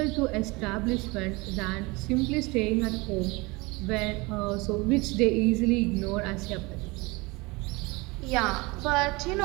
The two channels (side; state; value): left; quieter; 24.9 dB